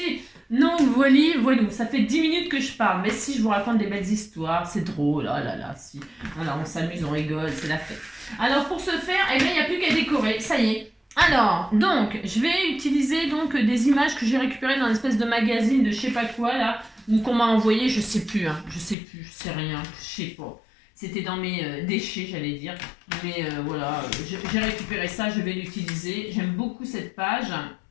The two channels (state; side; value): drops out; right; at 18.9 s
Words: Non, voilà, ça fait 10 minutes que je parle, mais si je vous raconte des belles histoires, c'est drôle, oh là là, si. Alors on s'amuse, on rigole, c'est la fête. Alors pour ce faire, eh bien, il n'y a plus qu'à décorer, ça y est. Alors, donc, je vais utiliser donc des images que j'ai récupérées dans une espèce de magazine de je sais pas quoi, là, ou qu'on m'a envoyé, je sais plus, hein, je sais rien, je sais pas. C'était dans mes déchets, j'allais dire. Mais voilà, j'ai récupéré ça, je vais l'utiliser. J'aime beaucoup cette page.